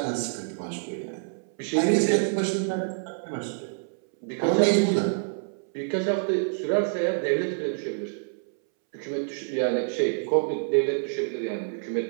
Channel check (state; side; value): silent; left; 60 dB below the other